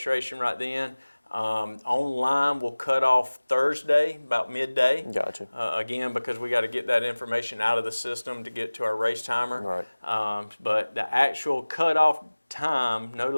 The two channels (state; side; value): inverted; both; correlation -1.00